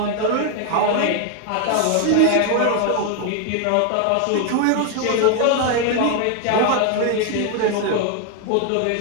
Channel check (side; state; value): both; different; correlation 0.00